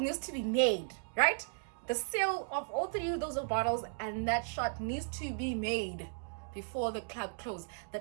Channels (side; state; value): left; silent; digital silence